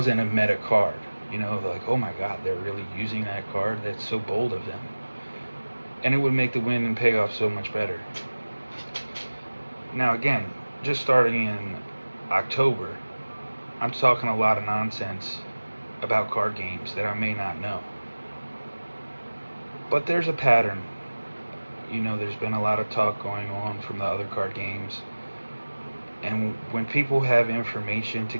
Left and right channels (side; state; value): both; inverted; correlation -1.00